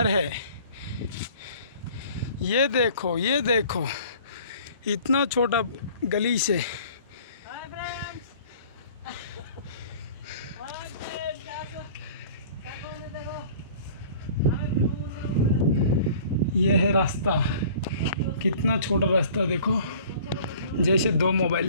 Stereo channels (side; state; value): both; inverted; correlation -0.48